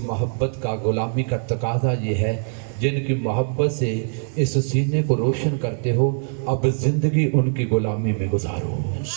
محبت کا غلامی کا تقاضا یہ ہے جن کی محبت سے اس سینے کو روشن کرتے ہو، اب زندگی ان کی غلامی میں گزارو۔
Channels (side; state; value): left; silent; 63 dB below the other